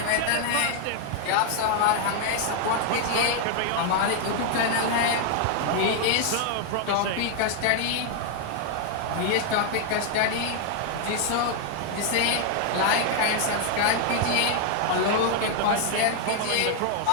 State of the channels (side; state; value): both; different; correlation 0.00